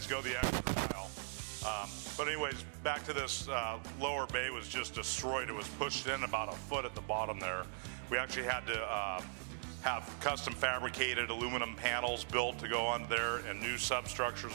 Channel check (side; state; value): left; silent; digital silence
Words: go the extra mile. But anyways, back to this lower bay was just destroyed. It was pushed in about a foot at the bottom there. We actually had to have custom fabricated aluminum panels built to go on there, and new